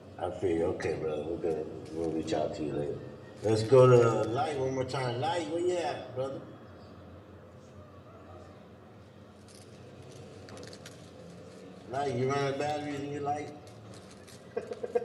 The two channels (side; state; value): both; identical; correlation 1.00